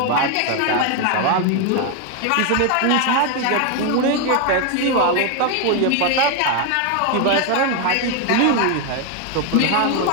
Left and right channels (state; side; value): different; both; correlation 0.01